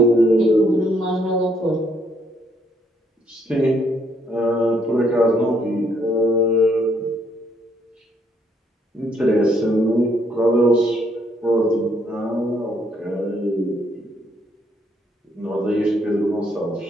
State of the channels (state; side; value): normal; both; correlation 0.70